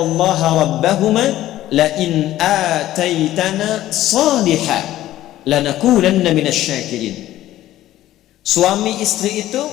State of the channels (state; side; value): quieter; right; 14.2 dB